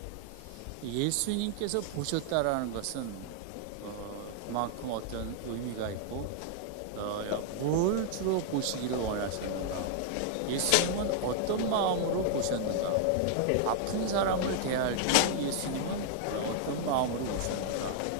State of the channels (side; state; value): both; different; correlation -0.01